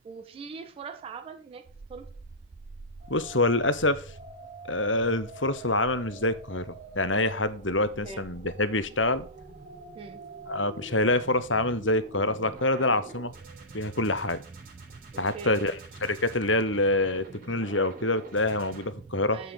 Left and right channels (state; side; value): normal; both; correlation -0.19